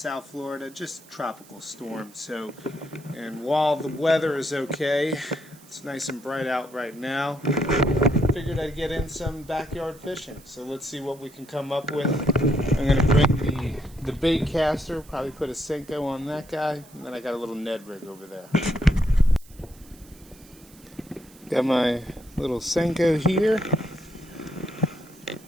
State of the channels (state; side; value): noise; right; hiss, 24 dB below the sound